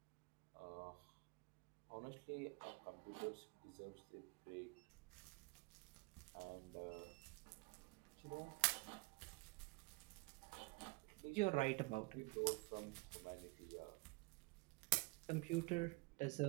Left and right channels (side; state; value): left; quieter; 25.3 dB